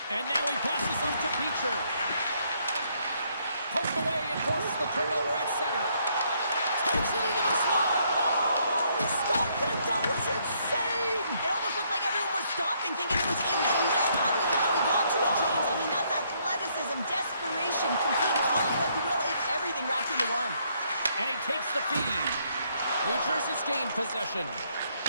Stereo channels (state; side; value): inverted; both; correlation -0.70